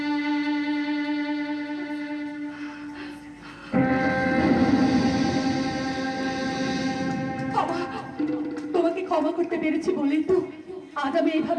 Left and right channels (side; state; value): both; identical; correlation 1.00